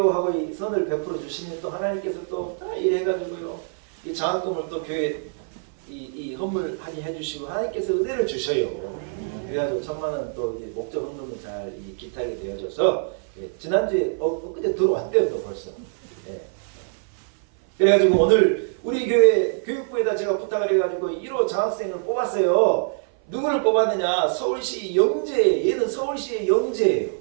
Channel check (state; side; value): silent; left; 57 dB below the other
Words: 하고 이 선을 베풀어 주시면 또 하나님께서 또 다 일해가지고요 이 장학금을 또 교회 이 헌물하게 해주시고 하나님께서 은혜를 주셔요. 그래가지고 1,000,000원 또 목적 헌금을 잘 기타게 되어져서 지난주에 엊그제 들어왔대요 또 벌써. 그래가지고 오늘 우리 교회 교육부에다 제가 부탁을 해가지고 1호 장학생을 뽑았어요. 누구를 뽑았느냐? 서울시 영재. 얘는 서울시의 영재예요.